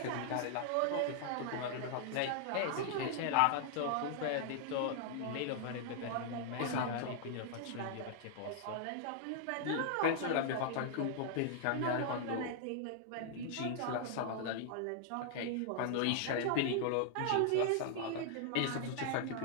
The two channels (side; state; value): both; different; correlation -0.01